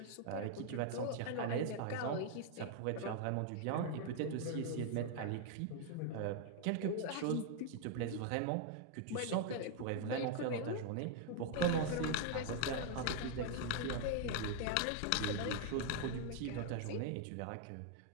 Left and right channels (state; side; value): different; both; correlation 0.00